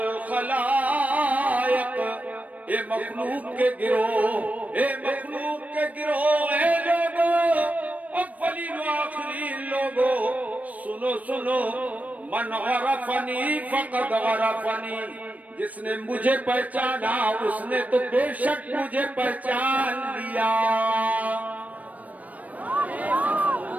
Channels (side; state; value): left; late; 0.071 ms